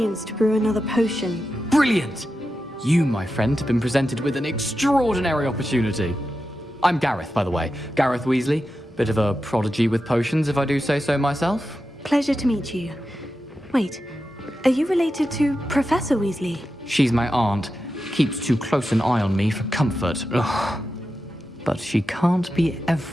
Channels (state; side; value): normal; both; correlation 0.90